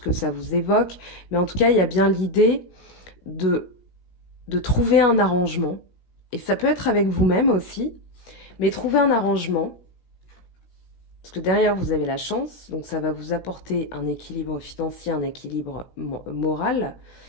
ça vous évoque. Mais en tout cas, il y a bien l'idée de trouver un arrangement. Et ça peut être avec vous-même aussi, mais trouver un arrangement. Parce que derrière, vous avez la chance, donc ça va vous apporter un équilibre financier, un équilibre moral,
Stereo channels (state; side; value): late; right; 17 ms